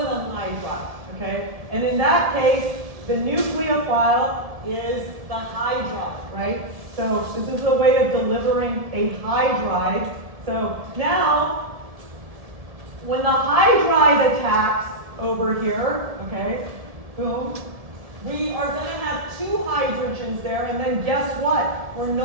hydride. Okay, and in that case, the nucleophile is the hydride, right? So this is a way of delivering a hydride. So now, when the hydride attacks over here, okay, boom, we are going to have two hydrogens there, and then guess what? We're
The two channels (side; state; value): left; late; 1.7 ms